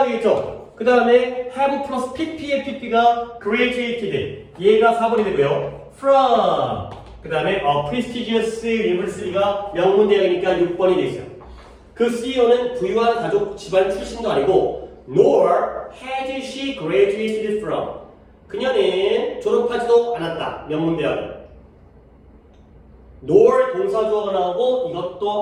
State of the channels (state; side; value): identical; both; correlation 1.00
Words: 되겠죠. 그 다음에 have 플러스 pp의 pp가 graduated. 얘가 4번이 되고요. from. 그 다음에 prestigious university가 명문대학이니까 6번이 되어 있어요. 그 CEO는 부유한 가족 집안 출신도 아니고 nor has she graduated from. 그녀는 졸업하지도 않았다. 명문대학을. nor 동사주어가 나오고